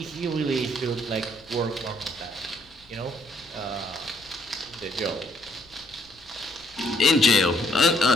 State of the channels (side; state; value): left; noise; rumble, 28 dB below the sound